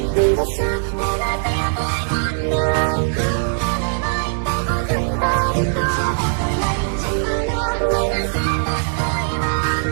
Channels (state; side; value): silent; left; digital silence